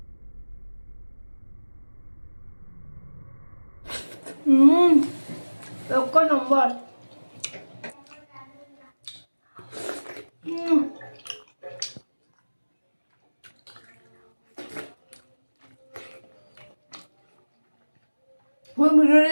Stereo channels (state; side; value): inverted; both; correlation -1.00